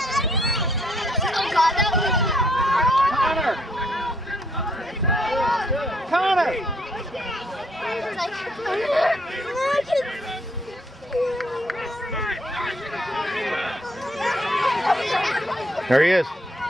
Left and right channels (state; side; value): normal; both; correlation 0.69